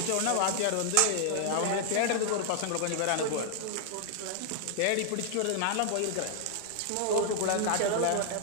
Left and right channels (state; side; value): different; both; correlation -0.01